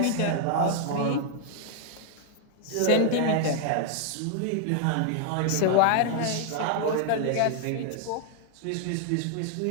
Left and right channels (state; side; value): different; both; correlation 0.00